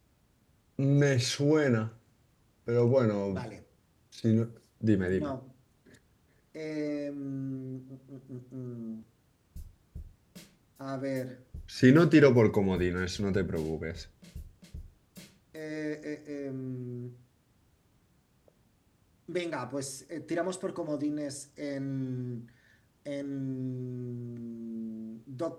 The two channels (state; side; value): identical; both; correlation 1.00